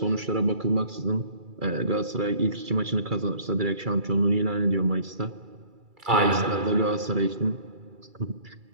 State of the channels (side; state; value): left; late; 2.3 ms